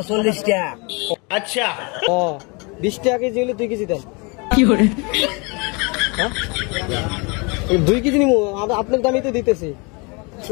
40 টাকা। আচ্ছা ও 20 টাকা কেজি হলে 2 কেজি দেন। কি করে? হ্যাঁ 2 কেজি নিমু, আপনার দামই তো দিতেছি।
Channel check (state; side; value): quieter; right; 30.2 dB